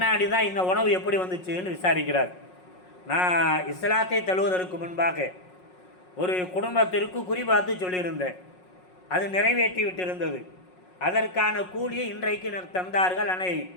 தான் இந்த உணவு எப்படி வந்துச்சுன்னு விசாரிக்கிறார். நான் இஸ்லாத்தை தழுவதற்கு முன்பாக ஒரு குடும்பத்திற்கு குறிபார்த்து சொல்லியிருந்தேன், அது நிறைவேற்றி விட்டிருந்தது. அதற்கான கூலியை இன்றைக்கு தந்தார்கள், ஆனால்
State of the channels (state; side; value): late; right; 5.5 ms